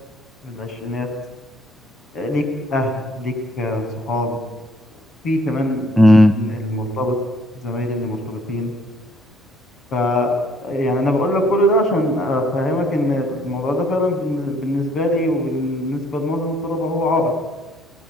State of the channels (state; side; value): normal; both; correlation 0.64